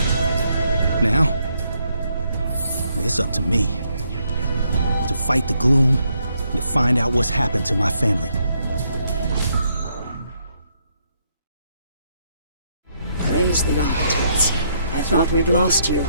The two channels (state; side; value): inverted; both; correlation -0.74